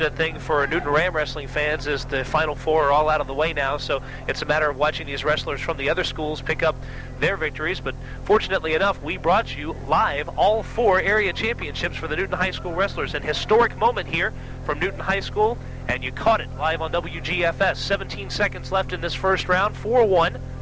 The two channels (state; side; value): identical; both; correlation 1.00